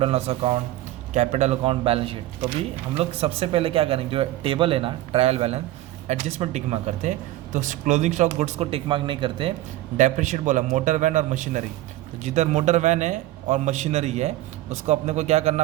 and loss account, capital account, balance sheet. तो भी हम लोग सबसे पहले क्या करेंगे, जो टेबल है ना, trial balance, adjustment tick mark करते हैं। तो क्लोजिंग स्टॉक गुड्स को टिक मार्क नहीं करते। डेप्रिशिएट बोला मोटर वैन और मशीनरी, तो जिधर मोटर वैन है और मशीनरी है उसको अपने को क्या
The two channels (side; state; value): left; quieter; 15.7 dB